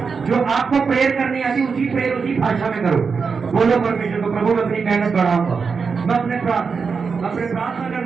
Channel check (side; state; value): left; quieter; 5.3 dB